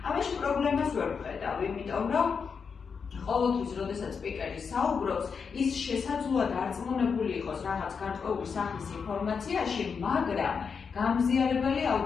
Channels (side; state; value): right; quieter; 5.9 dB